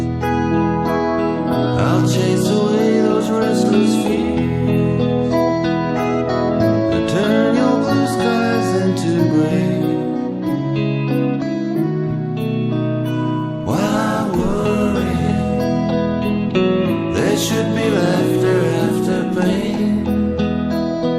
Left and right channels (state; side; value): identical; both; correlation 1.00